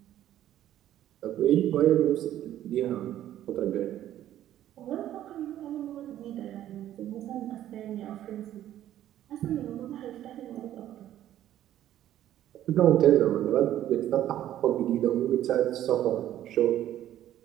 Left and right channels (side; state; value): left; quieter; 12.3 dB